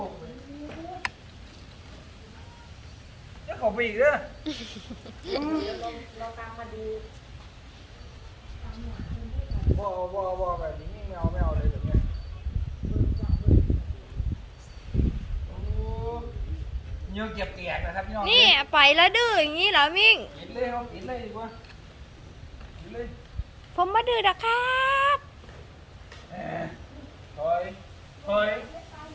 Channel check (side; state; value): both; identical; correlation 1.00